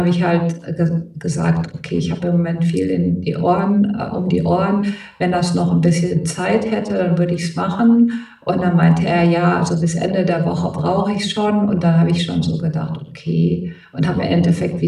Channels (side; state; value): both; identical; correlation 1.00